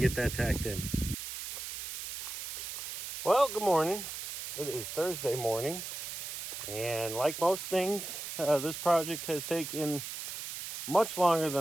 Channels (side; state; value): right; noise; hiss, 7 dB below the sound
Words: get that tacked in. Well, good morning. It is Thursday morning, and like most things, this project has taken much longer